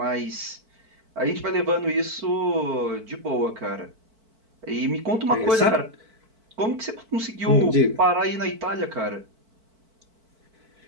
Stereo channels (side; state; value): left; late; 4.5 ms